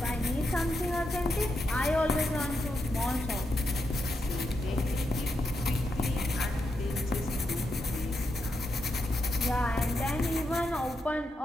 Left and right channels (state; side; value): normal; both; correlation 0.84